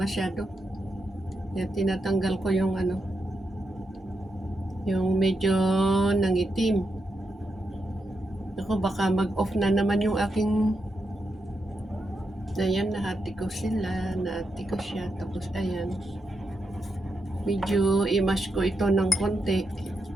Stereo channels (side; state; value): both; normal; correlation 0.84